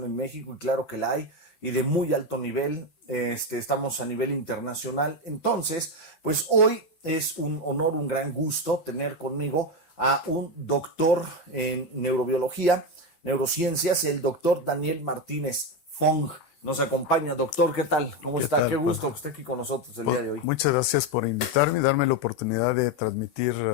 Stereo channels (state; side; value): late; right; 12 ms